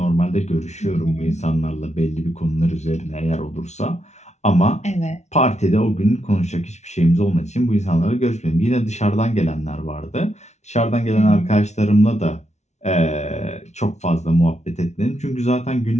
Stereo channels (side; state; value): right; late; 0.32 ms